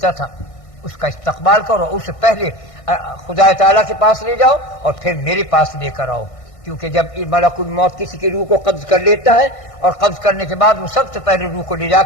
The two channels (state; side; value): late; right; 1.6 ms